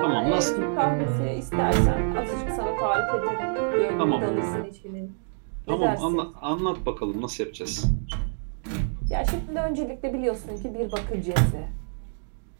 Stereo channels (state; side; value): silent; left; 60 dB below the other